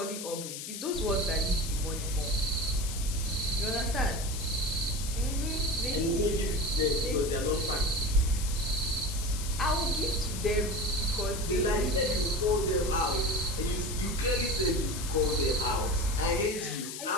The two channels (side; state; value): left; noise; hiss, 8 dB below the sound